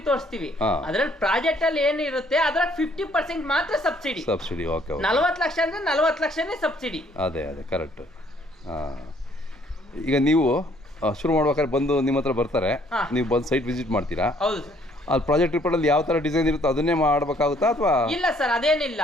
ತೋರಿಸ್ತೀವಿ. ಅದ್ರಲ್ಲಿ ಪ್ರಾಜೆಕ್ಟ್ ಅಲ್ಲಿ ಏನಿರುತ್ತೆ ಅದ್ರ 50% ಮಾತ್ರ ಸಬ್ಸಿಡಿ. 40 ಲಕ್ಷ ಅಂದ್ರೆ 40 ಲಕ್ಷನೇ ಸಬ್ಸಿಡಿ. ಅದೇ ಕರೆಕ್ಟ್. ಈಗ ನೀವು ಶುರು ಮಾಡ್ಬೇಕಾದ್ರೆ ಬಂದು ನಿಮ್ಮ ಹತ್ರ ಬರ್ತಾರೆ, ನೀವು ಬಂದು ಸೈಟ್ ವಿಸಿಟ್ ಮಾಡ್ತೀರಾ? ಹೌದು. ಅಲ್ಲಿ ಪ್ರಾಜೆಕ್ಟ್ ರಿಪೋರ್ಟ್ ಅಲ್ಲಿ ಯಾವ ತರ ಡಿಸೈನ್ ಇರುತ್ತೋ ಅದನ್ನೇ ಮಾಡ್ಬೇಕಾಗುತ್ತಾ ಅಥವಾ? ಇಲ್ಲ ಸರ್, ಅದೇನಿಲ್ಲ.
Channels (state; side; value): normal; both; correlation 0.63